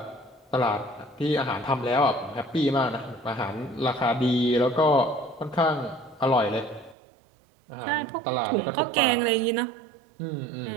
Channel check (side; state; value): left; drops out; at 7.0 s